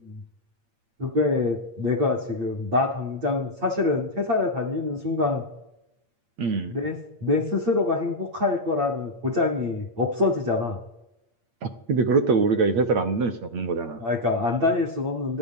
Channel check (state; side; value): late; left; 8.7 ms